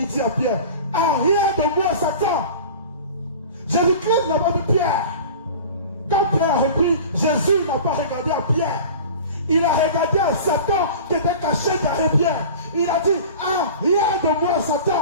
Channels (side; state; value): both; inverted; correlation -0.38